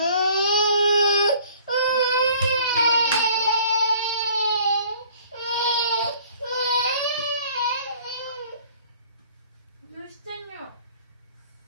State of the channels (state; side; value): inverted; both; correlation -0.53